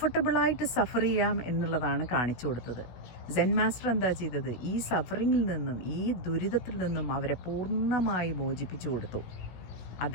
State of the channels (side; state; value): right; late; 17 ms